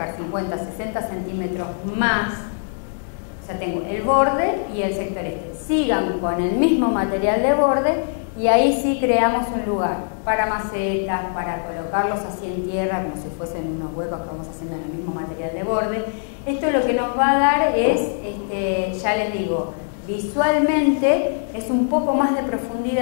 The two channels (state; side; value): silent; right; digital silence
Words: 50, 60 centímetros más, o sea, tengo el borde y el sector este. Sigan con el mismo material de borde y ahí sí creamos un lugar para macetas, para colocarlos así en tierra, como si fuesen unos huecos que vamos haciendo en el mismo material de borde. Esto lo que nos va a dar es, ya les digo, visualmente es un poco más de